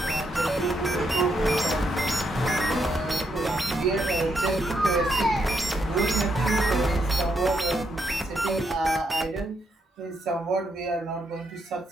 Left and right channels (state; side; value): normal; both; correlation 0.78